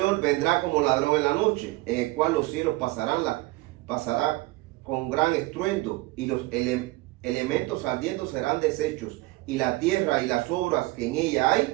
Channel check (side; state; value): left; quieter; 21.2 dB